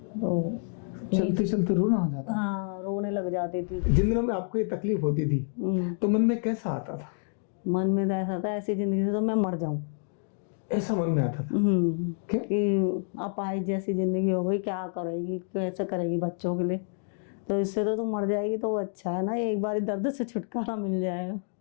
तो चलते चलते रोना आ जाता? हाँ, रोने लग जाती थी। जिन दिनों में आपको ये तकलीफ होती थी तो मन में कैसा आता था? मन में तो ऐसा था ऐसी जिंदगी से तो मैं मर जाऊं, ऐसा मन में आता था? क्या? कि अपाहिज जैसी जिंदगी हो गई, क्या करेगी, कैसे करेगी बच्चों के लिए, तो इससे तो तू मर जाएगी तो वो अच्छा है ना, एक बार दर्द से छुटकारा मिल जाएगा।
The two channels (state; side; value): silent; right; 59 dB below the other